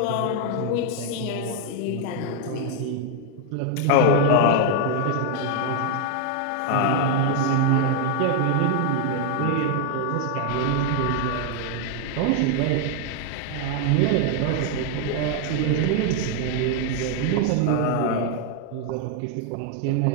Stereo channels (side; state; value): both; different; correlation 0.00